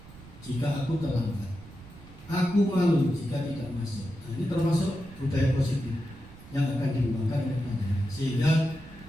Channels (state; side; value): noise; right; rumble, 19 dB below the sound